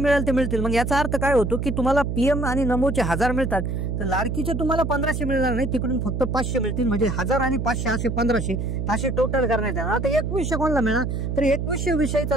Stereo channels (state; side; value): noise; right; hum, 3 dB below the sound